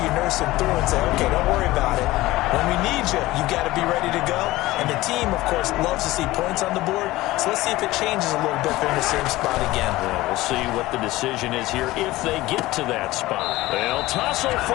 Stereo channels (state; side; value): quieter; right; 18.1 dB